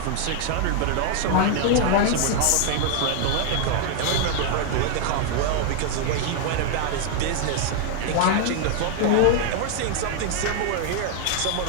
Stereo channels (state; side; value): different; both; correlation 0.00